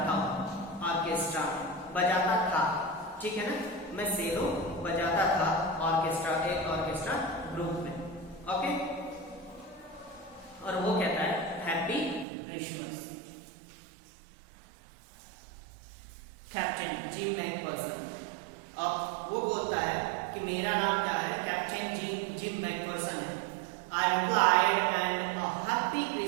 हूँ, ऑर्केस्ट्रा बजाता था, ठीक है ना, मैं सेलो बजाता था ऑर्केस्ट्रा, एक ऑर्केस्ट्रा ग्रुप में, ओके। और वो कहता है happy Christmas. Captain gym Macpherson, अब वो बोलता है कि मेरा नाम क्या है, कैप्टन जिम मैकफर्सन है। I replied, and a happy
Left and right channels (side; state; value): left; drops out; at 12.2 s